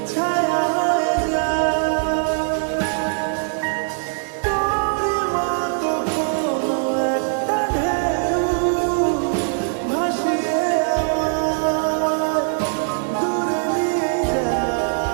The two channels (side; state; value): left; silent; 61 dB below the other